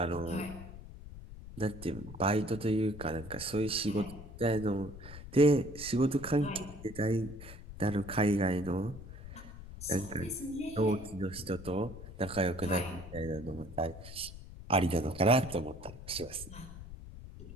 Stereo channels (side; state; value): left; noise; rumble, 13 dB below the sound